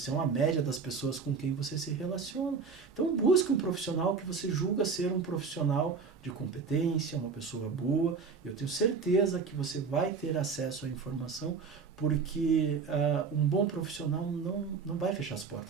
é uma média das pessoas com quem você se relaciona. Então, busque um profissional que você julga ser um profissional de competência, uma pessoa boa. Eu tenho certeza que você vai ter acesso à informação, porque um bom profissional não vai fechar as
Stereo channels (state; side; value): quieter; left; 5.3 dB